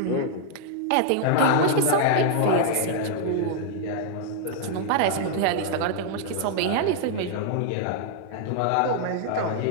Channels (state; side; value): different; both; correlation 0.00